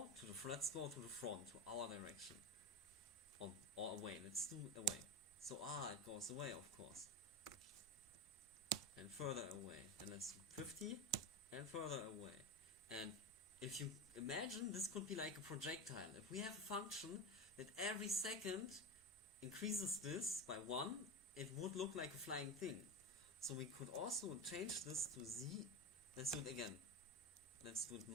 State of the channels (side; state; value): both; normal; correlation 0.20